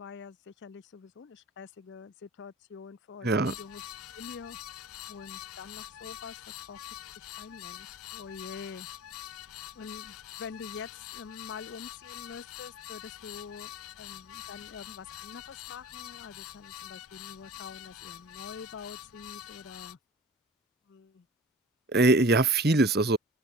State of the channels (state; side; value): normal; both; correlation 0.43